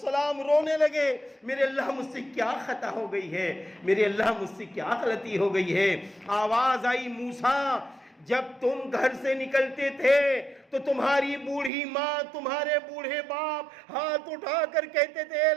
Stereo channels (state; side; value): drops out; left; at 11.7 s